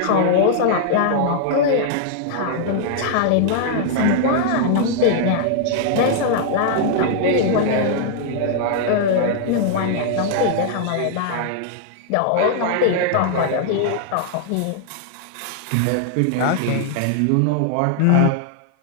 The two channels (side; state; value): both; different; correlation -0.01